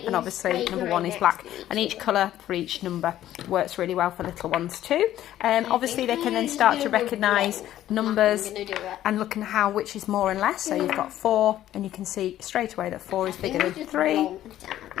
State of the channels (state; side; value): quieter; right; 12.8 dB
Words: and obviously number 1 is black, and each colour for each number works really well for little ones too. Obviously they can then start to recognise numbers and look at how which is more and less. So you've got 4 and you can see straight away that 4 is bigger than 3,